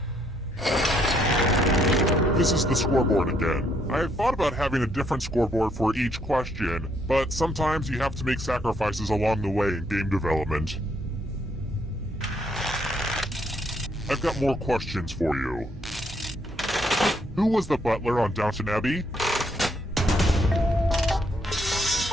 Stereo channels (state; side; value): normal; both; correlation 0.71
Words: This is the scoreboard again. I have thought about having a different scoreboard for each question, but sometimes you have to make sacrifices along the way in game development. I've got more questions for you. Who was the butler on Downton Abbey?